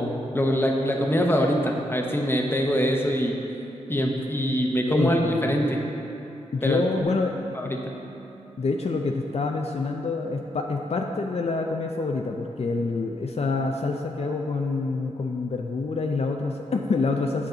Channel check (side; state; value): both; normal; correlation 0.78